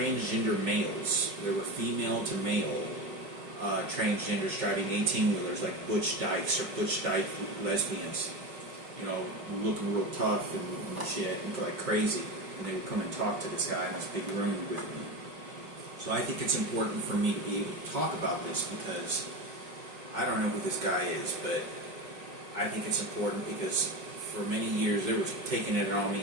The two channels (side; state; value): left; late; 5.3 ms